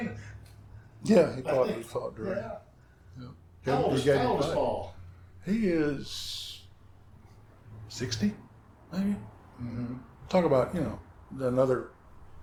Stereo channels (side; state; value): both; identical; correlation 1.00